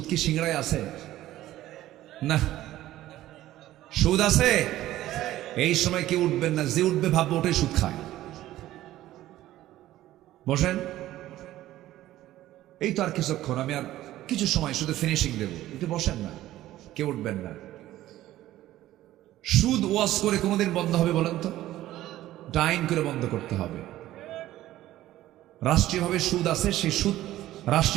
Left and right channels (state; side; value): quieter; left; 14.6 dB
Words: কি সিংড়ায় আছে? না। সুদ আছে? এই সময় কেউ উঠবেন না, যে উঠবে ভাববো ওটাই সুদ খায়। বসেন। এই তো আর কিছুক্ষণ, আমি আর কিছু সময় শুধু ফিনিশিং দেব, একটু বসেন না, কেউ উঠবেন না। সুদ ওয়াজ করে কোনোদিন বন্ধ হবে বলেন তো? ডাইন করে বন্ধ করতে হবে। রাষ্ট্রীয়ভাবে সুদ আছে, সেই সুদ